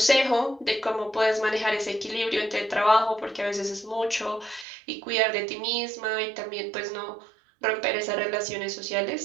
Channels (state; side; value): drops out; left; at 4.7 s